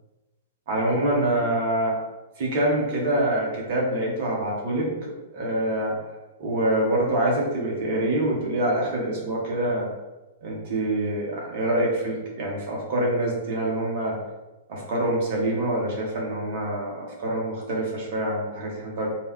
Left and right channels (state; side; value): inverted; both; correlation -0.32